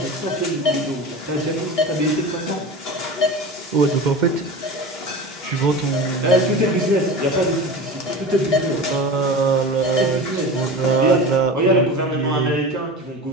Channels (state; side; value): normal; both; correlation 0.31